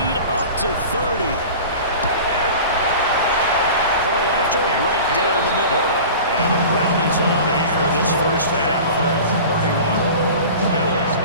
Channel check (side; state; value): both; inverted; correlation -0.37